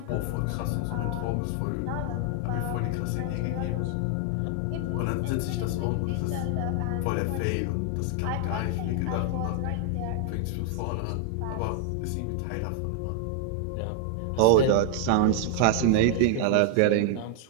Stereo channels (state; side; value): different; both; correlation 0.00